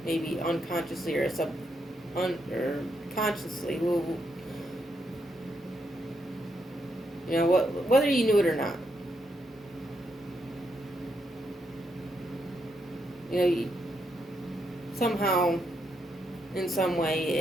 maybe unconsciously or or consciously. You know, whether you knew it or not. You know, somehow, in some way,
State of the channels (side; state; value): both; normal; correlation 0.79